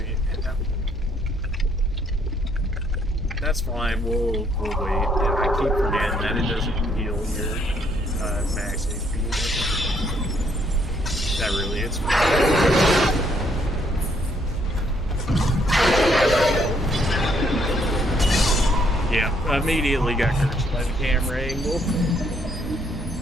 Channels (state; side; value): normal; both; correlation 0.69